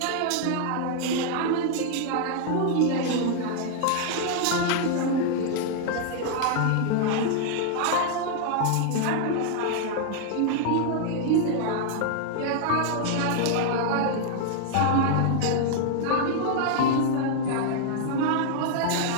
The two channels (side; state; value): both; different; correlation 0.00